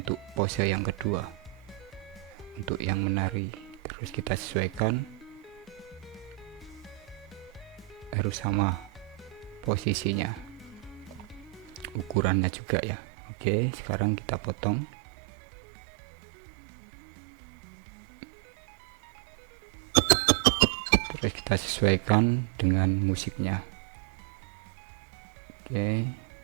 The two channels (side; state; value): left; drops out; at 12.4 s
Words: pose yang kedua, untuk yang menari, terus kita sesuaikan harus sama posisinya, ukurannya juga ya. Oke, sekarang kita potong. Terus kita sesuaikan dengan musiknya. Oke.